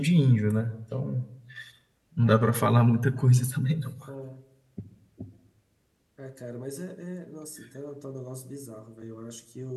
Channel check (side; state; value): both; identical; correlation 1.00